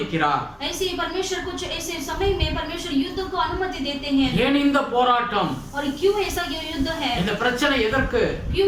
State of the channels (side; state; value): both; identical; correlation 1.00